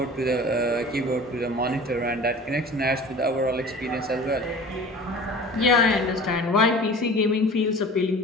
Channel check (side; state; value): both; normal; correlation 0.41